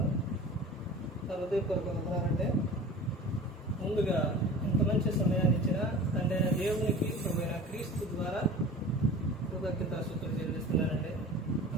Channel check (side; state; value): both; normal; correlation 0.39